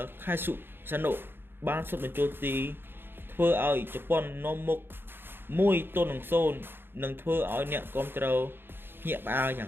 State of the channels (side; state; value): left; late; 0.10 ms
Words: ខៃសុសាណូបានសុទ្ធបញ្ចូលទីធ្វើឲ្យជប៉ុននាំមុខ1-0និងធ្វើឲ្យអ្នកគាំទ្រភ្ញាក់ផ្អើលយ៉